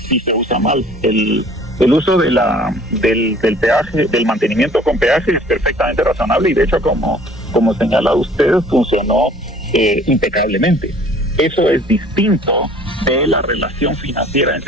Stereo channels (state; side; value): normal; both; correlation 0.52